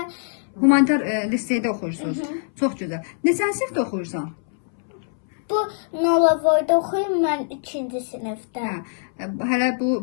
humanitar liseydə oxuyursunuz. Çox gözəl. Neçənci sinifdə oxuyursan? bu Nolavoyda oxuyum mən 2-ci sinifdə. Hələ bu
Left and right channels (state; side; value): silent; right; 63 dB below the other